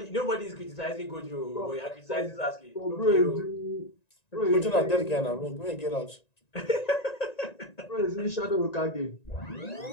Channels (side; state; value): right; late; 1.9 ms